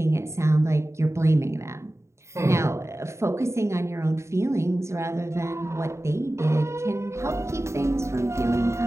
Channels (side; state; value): left; late; 0.14 ms